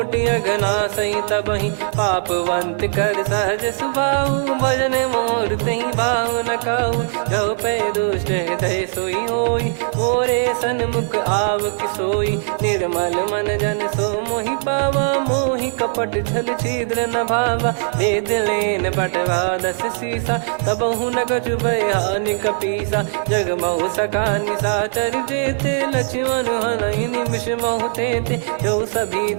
अघना सही तबहि, पापवंत कर सहज सुभाऊ, भजन मोर तहि भाव न काहू, जो पै दुष्ट हृदय सोई होई, मोरे सन्मुख आव किसोई, निर्मल मन जन सो मोहि पावा, मोहि कपट छल छिद्र न भावा, भेद लेन बटवा दस सीसा, तबहु न कछु बयानि कपीसा, जग महु सका निशाचर जेते, लक्ष्मण हनहि निमिष महु तेते, जो सभी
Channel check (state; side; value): silent; left; digital silence